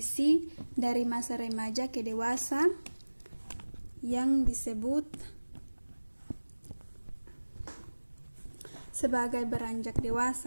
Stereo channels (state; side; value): inverted; both; correlation -1.00